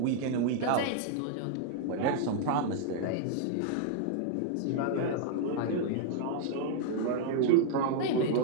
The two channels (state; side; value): different; both; correlation 0.00